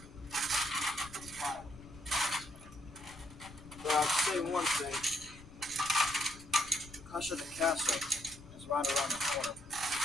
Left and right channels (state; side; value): noise; left; rumble, 18 dB below the sound